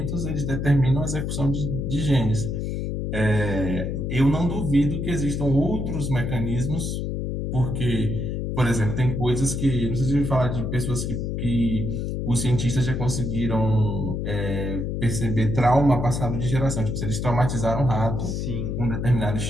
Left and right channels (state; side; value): noise; left; hum, 2 dB below the sound